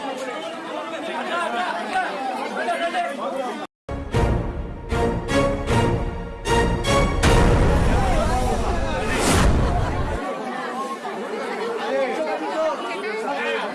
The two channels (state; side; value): identical; both; correlation 1.00